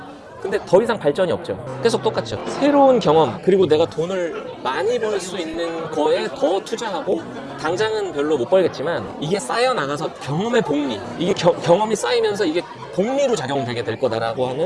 근데 더 이상 발전이 없죠. 계속 똑같죠. 새로운 경험, 그리고 내가 돈을 많이 벌 수 있는 거에 더 투자하고 당장은 별로 못 벌겠지만 이게 쌓여 나가서 경험의 복리, 이게 경험이 쌓이면서 이게 복리로 작용되게 될 거다라고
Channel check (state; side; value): identical; both; correlation 1.00